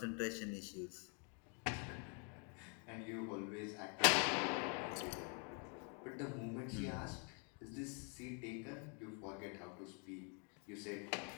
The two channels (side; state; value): right; quieter; 38.5 dB